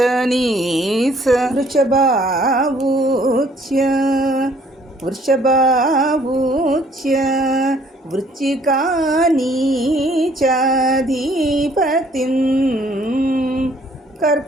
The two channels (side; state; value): both; normal; correlation 0.61